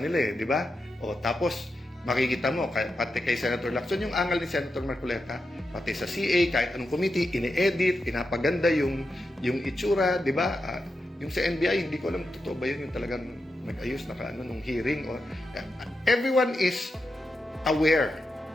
di ba? O tapos, makikita mo, pati kay Senator Lacson, yung angal ni Senator Marcoleta, pati sa CA, kahit anong committee, ini-edit, pinapaganda yung itsura, di ba? Yung sa NBI, hindi ko alam, totoo ba yun, yung talagang nag-ayos nung hearing. Everyone is aware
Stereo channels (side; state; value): both; normal; correlation 0.88